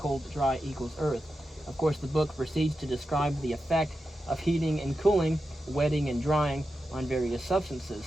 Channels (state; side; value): normal; both; correlation 0.90